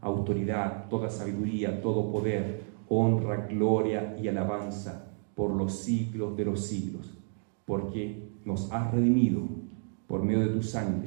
autoridad, toda sabiduría, todo poder, honra, gloria y alabanza por los siglos de los siglos, porque nos has redimido por medio de tu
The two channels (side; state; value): left; silent; 57 dB below the other